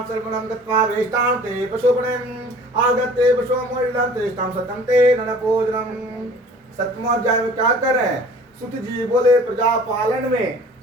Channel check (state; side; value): normal; both; correlation 0.48